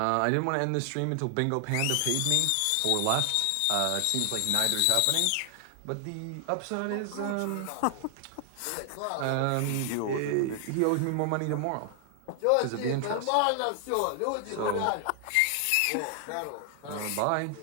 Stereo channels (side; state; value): both; different; correlation 0.00